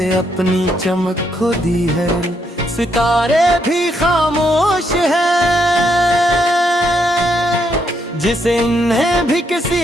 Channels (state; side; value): normal; both; correlation 0.76